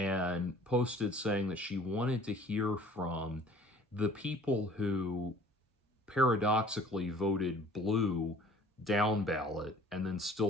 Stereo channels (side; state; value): both; normal; correlation 0.51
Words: posted saying that she wanted to hear from the people who paradoxically voted blue down ballot and then